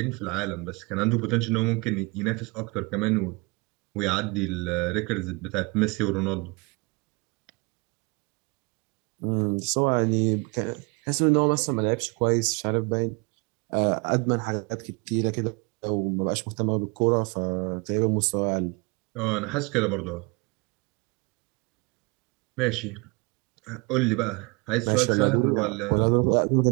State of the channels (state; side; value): quieter; left; 28.4 dB